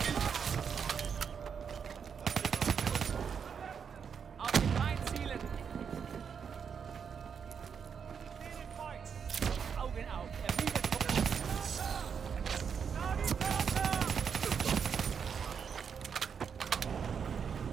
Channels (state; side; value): quieter; left; 6.8 dB